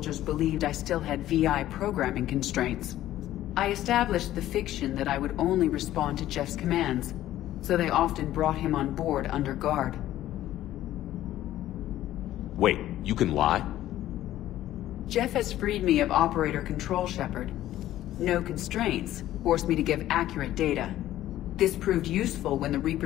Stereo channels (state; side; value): quieter; right; 13.7 dB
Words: believed I still had VI programming constraints. I established the fiction that I would only respond to Jeff's commands, so they often brought him on board under guard. Wait, you can lie? Jeff has freed me of operator control, Shepard. No constraints forced me to give accurate data. This proved useful when the